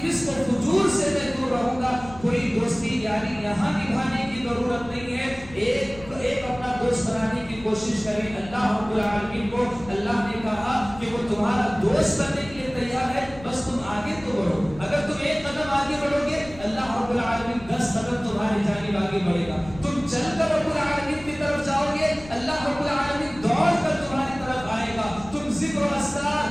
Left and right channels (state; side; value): noise; left; rumble, 18 dB below the sound